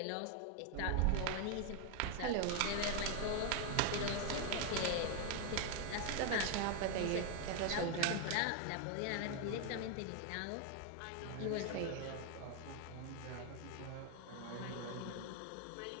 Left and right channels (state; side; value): different; both; correlation 0.01